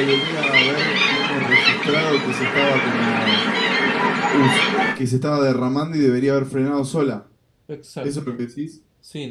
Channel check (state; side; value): identical; both; correlation 1.00